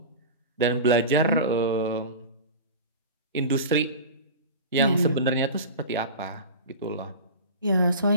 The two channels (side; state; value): both; inverted; correlation -0.31